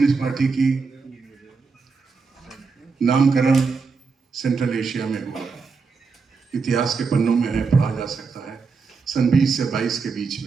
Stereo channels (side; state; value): left; quieter; 4.9 dB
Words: पार्टी की नामकरण सेंट्रल एशिया में हुआ। इतिहास के पन्नों में है, पढ़ा जा सकता है। सन 20 से 22 के बीच